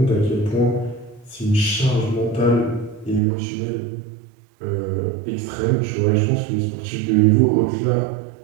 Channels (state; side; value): drops out; left; at 3.2 s